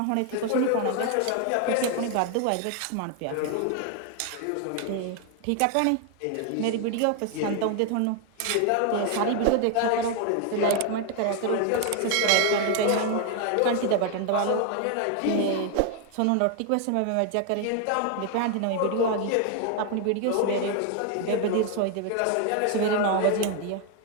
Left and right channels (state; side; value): different; both; correlation 0.00